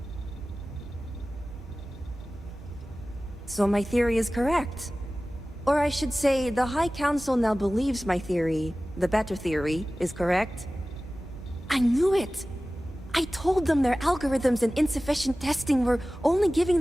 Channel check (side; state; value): both; normal; correlation 0.97